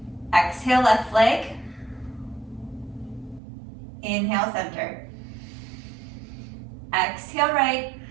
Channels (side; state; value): left; drops out; at 3.4 s